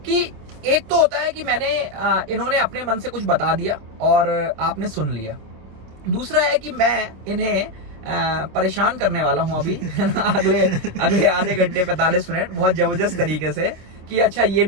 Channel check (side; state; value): left; late; 26 ms